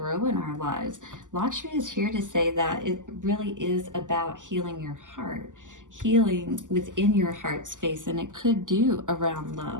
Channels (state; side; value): late; left; 0.87 ms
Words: in our lives. Lakshmi is here to say that it really is about healing your heart, healing within your heart space, and it could do around